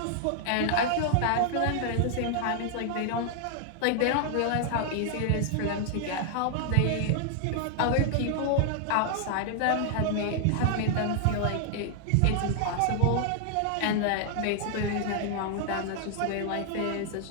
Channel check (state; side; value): different; both; correlation 0.00